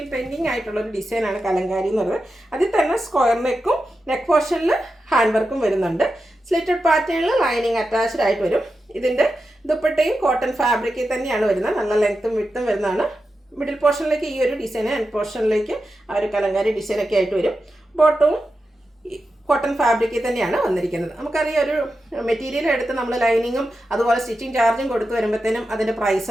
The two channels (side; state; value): both; normal; correlation 0.90